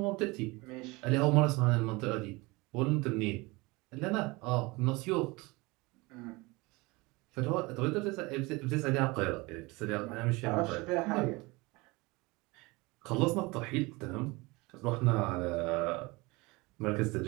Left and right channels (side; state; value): left; quieter; 24.1 dB